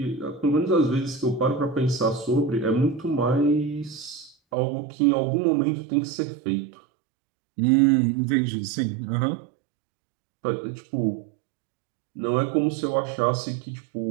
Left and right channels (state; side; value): drops out; left; at 4.4 s